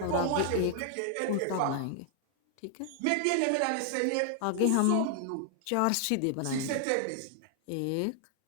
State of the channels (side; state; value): both; different; correlation 0.00